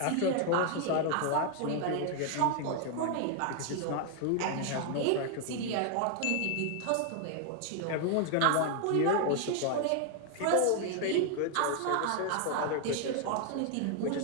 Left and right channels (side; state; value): both; different; correlation 0.00